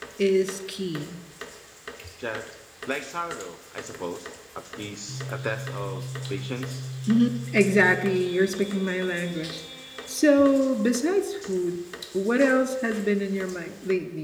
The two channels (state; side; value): identical; both; correlation 1.00